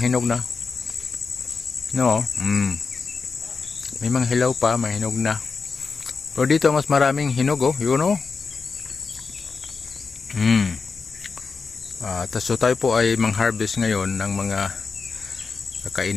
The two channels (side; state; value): right; quieter; 4.8 dB